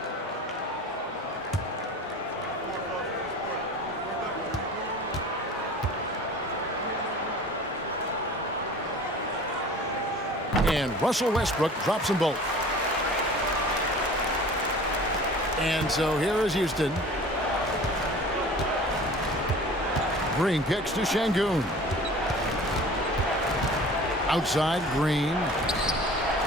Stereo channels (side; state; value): both; normal; correlation 0.43